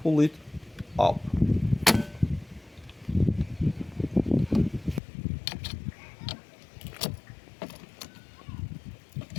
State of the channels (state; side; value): drops out; right; at 5.0 s